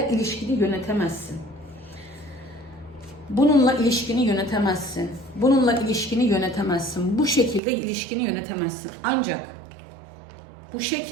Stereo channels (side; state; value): left; drops out; at 7.6 s